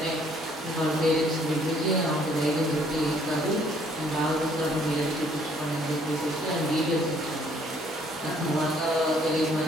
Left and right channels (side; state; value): both; normal; correlation 0.63